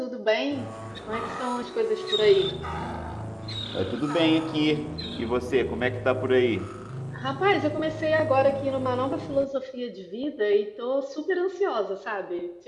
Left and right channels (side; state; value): both; identical; correlation 1.00